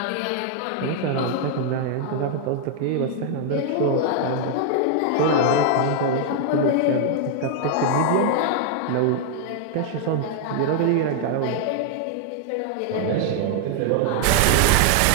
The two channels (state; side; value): different; both; correlation 0.00